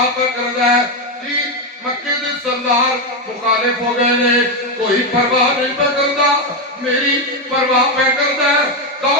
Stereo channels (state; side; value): normal; both; correlation 0.08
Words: پہ کرنا ہے جی مکے دے سردار مخالف ہو گئے نے کوئی پرواہ نہیں پہ کرتا میری پرواہ پہ کرنا ہے